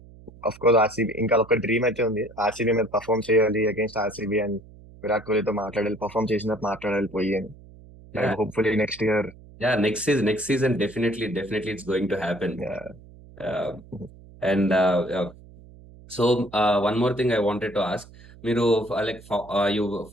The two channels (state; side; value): noise; right; hum, 21 dB below the sound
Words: of course RCB ఇంకా ఒక డ్రీమ్ అయితే ఉంది, ఆర్సీబీ మీద పర్ఫామ్ చేయాలి అగేన్స్ట్ ఆర్సీబీ అండ్ విరాట్ కోహ్లీతో మాట్లాడాలి, పర్ఫామ్ చేసినట్టు మాట్లాడాలి పోయి అని. Yeah, hopefully next year. yeah. Next season, definitely it's going to happen. Uh, and so one more thing I wanted to ask. మీరు లైక్ యూ